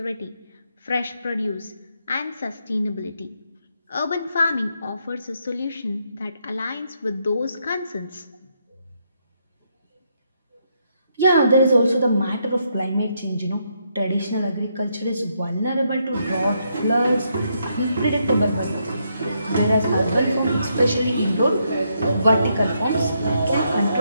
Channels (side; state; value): both; inverted; correlation -0.77